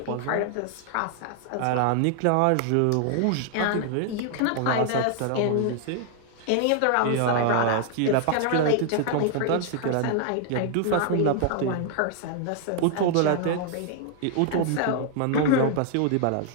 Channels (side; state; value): both; different; correlation 0.00